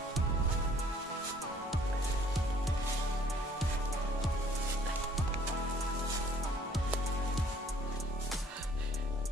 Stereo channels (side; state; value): both; normal; correlation 0.59